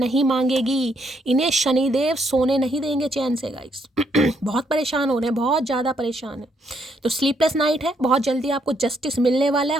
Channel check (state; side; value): normal; both; correlation 0.73